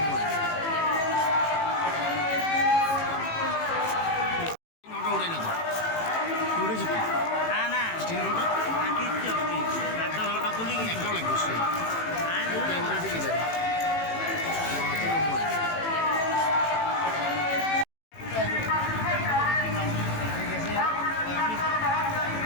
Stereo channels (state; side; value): late; right; 18 ms